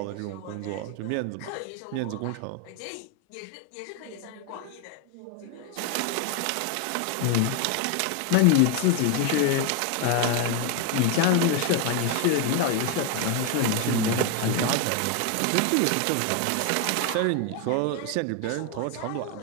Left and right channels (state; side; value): different; both; correlation 0.01